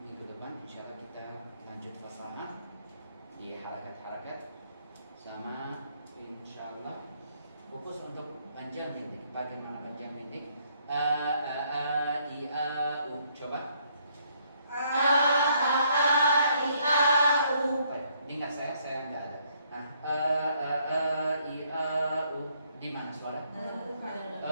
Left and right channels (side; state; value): both; inverted; correlation -0.69